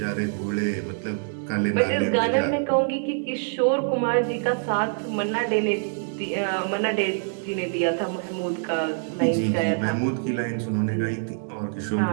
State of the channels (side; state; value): left; silent; digital silence